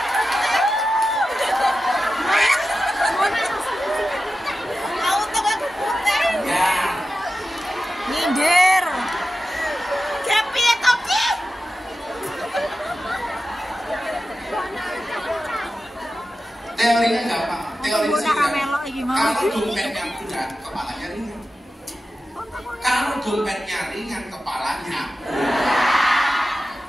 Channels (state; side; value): normal; both; correlation 0.92